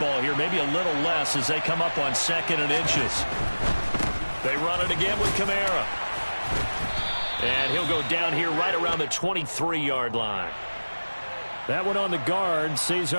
here, maybe a little less as they come up on 2nd and inches. They run it again with Kamara. And he'll go down here right around the 23-yard line. That one on the guard,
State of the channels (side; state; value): both; inverted; correlation -1.00